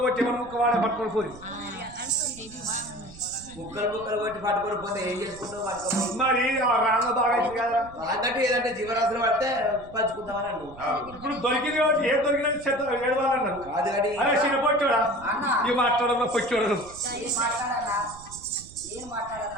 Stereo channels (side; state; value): right; noise; rumble, 19 dB below the sound